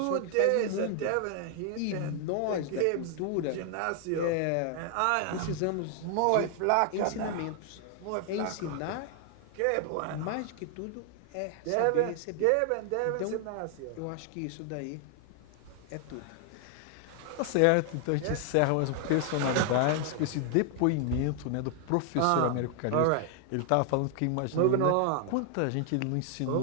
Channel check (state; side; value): different; both; correlation 0.00